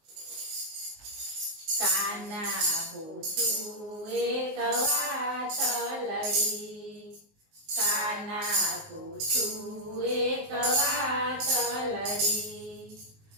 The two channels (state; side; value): late; left; 19 ms